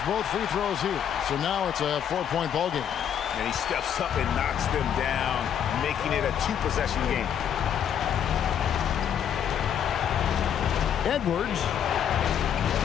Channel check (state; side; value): quieter; right; 8.9 dB